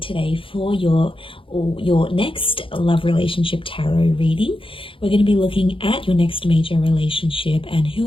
for your next love relationship tarot reading. We're going to be looking at your next major relationship and who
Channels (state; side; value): late; right; 0.25 ms